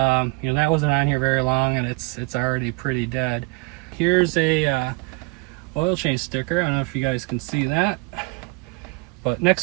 wasn't on here very long, and it's already pretty dead. Here's a oil change sticker. I don't know if you guys can see that, but next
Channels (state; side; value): quieter; left; 26.8 dB